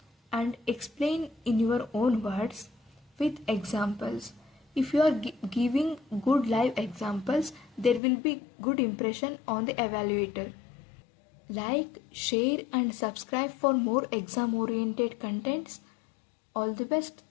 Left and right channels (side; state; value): right; drops out; at 8.0 s